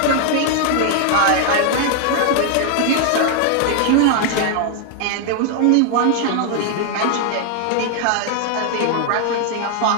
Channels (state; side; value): different; both; correlation 0.00